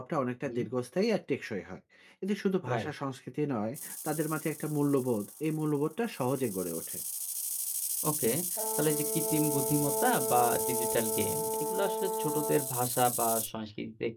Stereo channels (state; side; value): identical; both; correlation 1.00